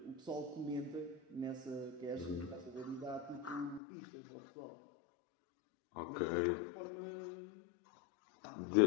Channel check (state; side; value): drops out; right; at 3.8 s